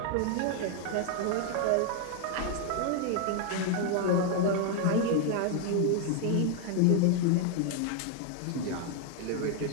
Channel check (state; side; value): different; both; correlation 0.00